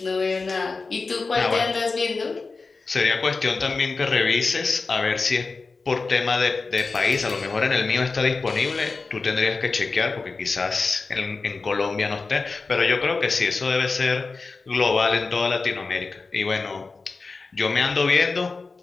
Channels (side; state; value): right; quieter; 4.1 dB